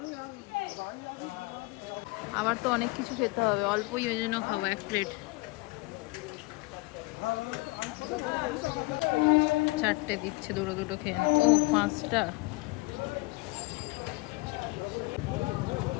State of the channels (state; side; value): quieter; right; 24.2 dB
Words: আমার তো অনেক কিছু খেতে হবে, অল্পই ওই জন্য খাবো এক প্লেট। চারটে দিচ্ছে, দুটো দুটো খেয়ে নাও। ও 5টা,